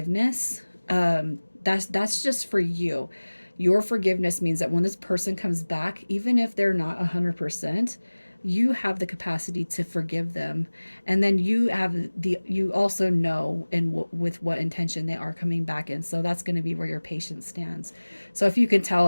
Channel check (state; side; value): inverted; both; correlation -1.00